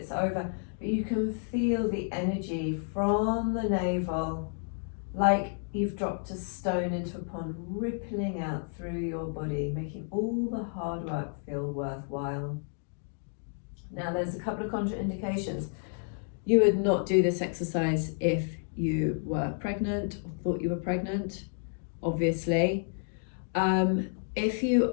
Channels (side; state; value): right; silent; 57 dB below the other